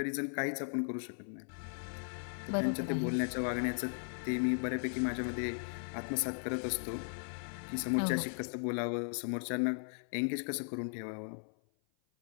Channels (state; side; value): silent; right; 53 dB below the other